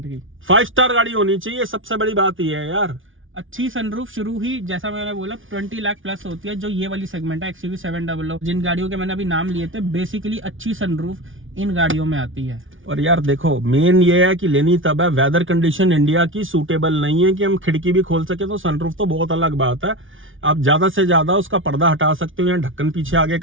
की। 5 स्टार गाड़ी होनी चाहिए, सबसे बड़ी बात ये है यार। अच्छी सनरूफ शुरू ही जैसा मैंने बोला 20 लाख प्लस होती है, जो ये वाली सेगमेंट है XUV 700, जिन गाड़ियों के मैंने अभी नाम लिए थे, बेसिकली अच्छी सनरूफ इन गाड़ियों में आती है। और यार देखो, मेन ये है कि लेनी तब है, वेदर कंडीशन इंडिया की सूटेबल नहीं है कि हम खिड़की भी खोल सके, तो सनरूफ तो बहुत अलग बात है। आप ज्यादा से ज्यादा उसका पर्दा हटा सकते हो या ढक्कन पीछे आगे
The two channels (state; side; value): late; left; 0.57 ms